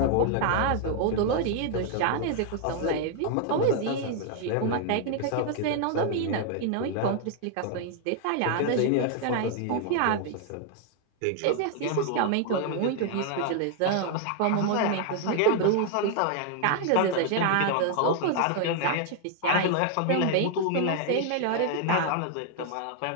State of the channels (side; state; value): both; different; correlation 0.00